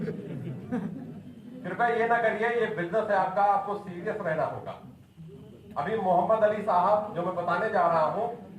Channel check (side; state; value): both; identical; correlation 1.00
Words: कृपया ये ना करिए, ये बिजनेस है आपका, आपको सीरियस रहना होगा। अभी मोहम्मद अली साहब जो मैं बताने जा रहा हूं,